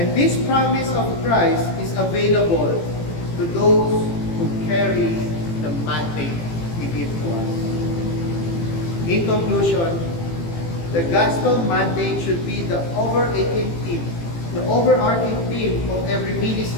this promise of Christ is available to those who carry the mandate He gives to us. In conclusion, the gospel mandate should be the overarching theme of every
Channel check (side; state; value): right; late; 18 ms